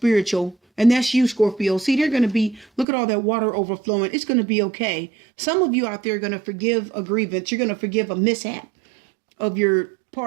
And that's you, Scorpio. See, they're going to be, look at all that water overflowing. It's going to be okay. Some of you out there are going to forgive a grievance. You're going to forgive a mishap of your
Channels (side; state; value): left; drops out; at 2.9 s